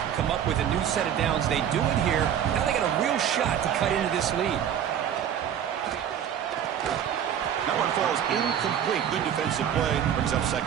and come up with a new set of downs. They do it here. Now they got a real shot to cut into this lead. That one falls incomplete. Good defensive play. Brings up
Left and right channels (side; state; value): left; quieter; 9.4 dB